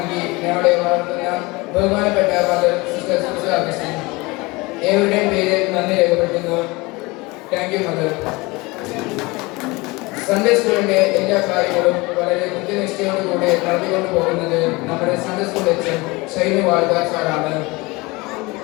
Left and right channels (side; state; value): right; quieter; 23.9 dB